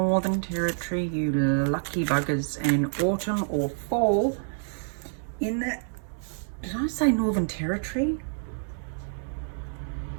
Territory, you lucky buggers, and autumn or fall in the... Did I say Northern Territory?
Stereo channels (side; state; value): left; silent; 60 dB below the other